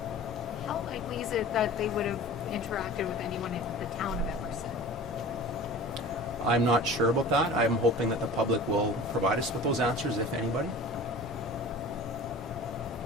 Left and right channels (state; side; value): normal; both; correlation 0.39